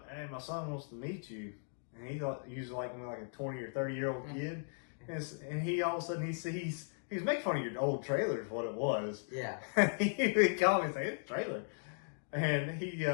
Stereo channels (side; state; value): right; silent; digital silence